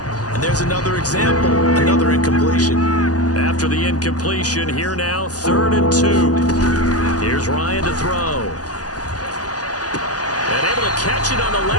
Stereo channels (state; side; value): late; right; 0.68 ms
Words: And there's another example, another incompletion. After the incompletion, here now, 3rd and 2. Here's Ryan to throw. And able to catch it on the